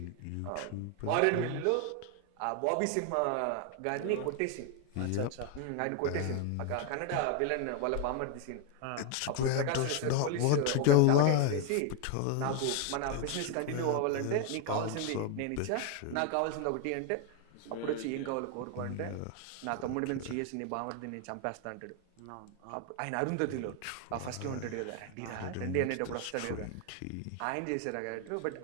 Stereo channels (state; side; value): different; both; correlation 0.01